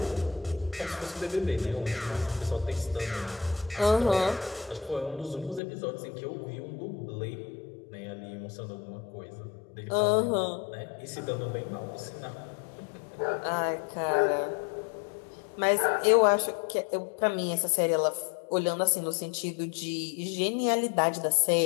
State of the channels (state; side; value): drops out; right; at 5.6 s